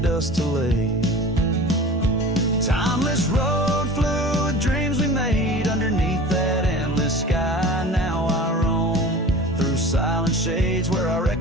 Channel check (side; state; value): both; normal; correlation 0.38